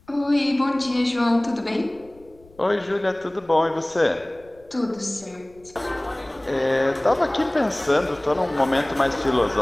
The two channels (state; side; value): noise; left; rumble, 28 dB below the sound